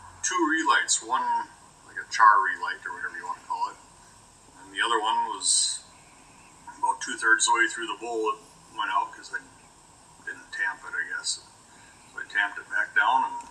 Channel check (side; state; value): both; identical; correlation 1.00